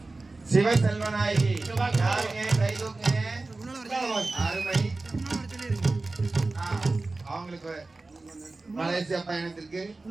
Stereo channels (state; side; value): quieter; left; 3.4 dB